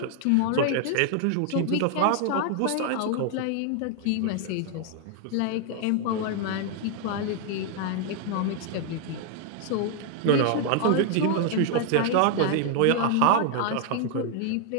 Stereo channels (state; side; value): different; both; correlation 0.00